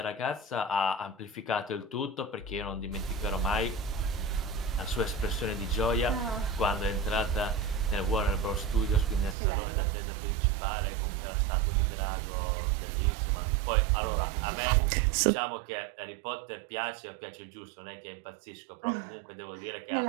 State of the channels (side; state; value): left; drops out; at 9.3 s